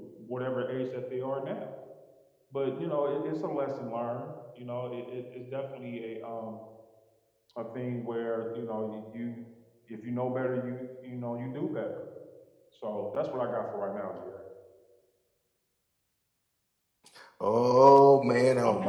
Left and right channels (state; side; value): identical; both; correlation 1.00